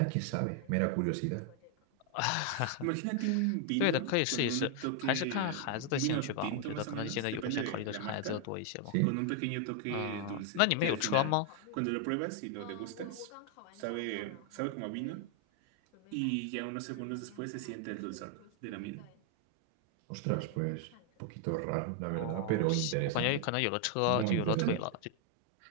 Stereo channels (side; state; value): both; different; correlation 0.00